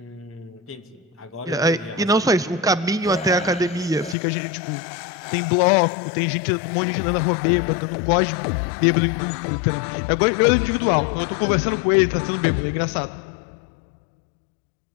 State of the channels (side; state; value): right; drops out; at 4.2 s